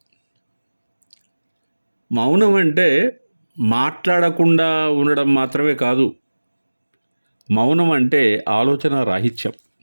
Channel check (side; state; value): both; inverted; correlation -1.00